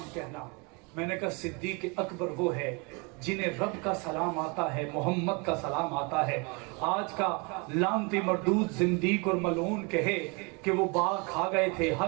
کہنا۔ میں نے کہا صدیق اکبر وہ ہے جنہیں رب کا سلام آتا ہے، محمد کا سلام آتا ہے۔ آج کا لعنتی مردود زندیق اور ملعون کہے کہ وہ باغ کھا گئے تھے،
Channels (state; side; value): quieter; left; 30.9 dB